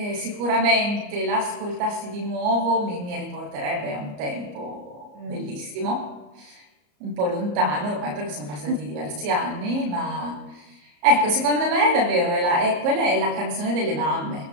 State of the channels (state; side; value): late; left; 34 ms